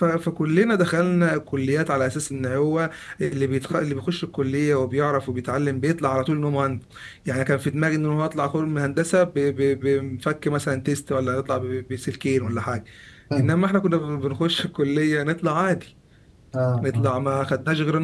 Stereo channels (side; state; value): both; identical; correlation 1.00